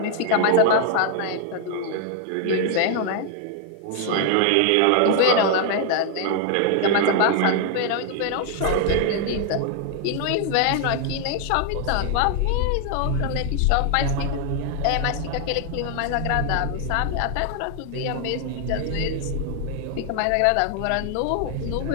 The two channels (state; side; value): different; both; correlation 0.00